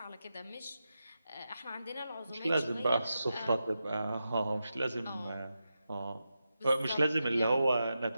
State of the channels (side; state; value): both; inverted; correlation -0.89